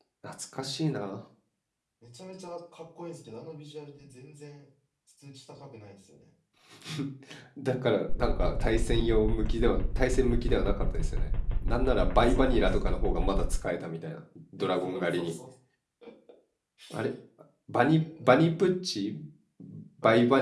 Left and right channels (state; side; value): identical; both; correlation 1.00